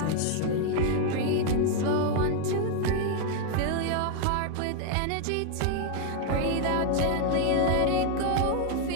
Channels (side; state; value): both; different; correlation 0.00